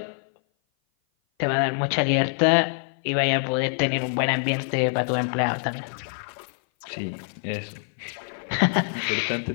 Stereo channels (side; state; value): right; silent; 57 dB below the other